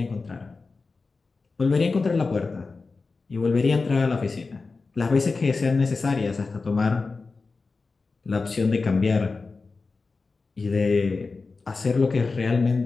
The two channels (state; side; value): quieter; right; 4.1 dB